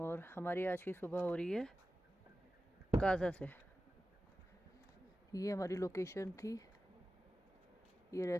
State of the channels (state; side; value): normal; both; correlation 0.94